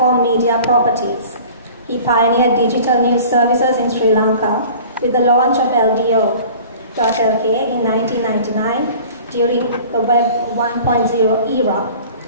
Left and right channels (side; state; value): both; inverted; correlation -0.44